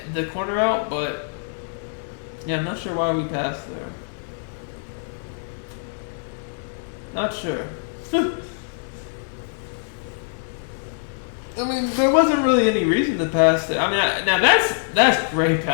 the corner out, but, yeah, I'm not sure why we passed there. Not sure. I mean, there wasn't really any reason to pass there. I mean, now that's great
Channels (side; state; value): right; silent; 63 dB below the other